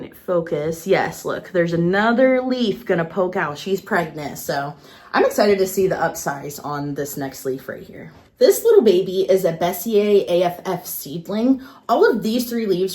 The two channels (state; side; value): identical; both; correlation 1.00